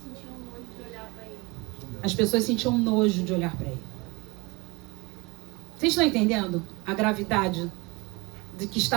sentiam nojo de olhar para ele. As pessoas sentiam nojo de olhar para ele. Vocês estão entendendo a gravidade de que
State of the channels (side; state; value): left; quieter; 25.6 dB